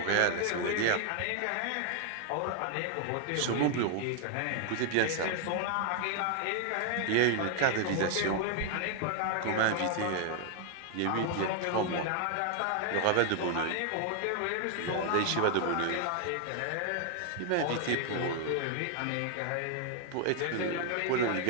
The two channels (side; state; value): both; different; correlation 0.00